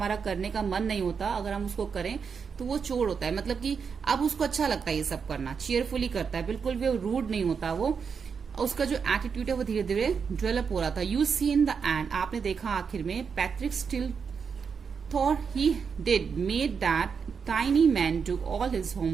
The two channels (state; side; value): quieter; left; 6.1 dB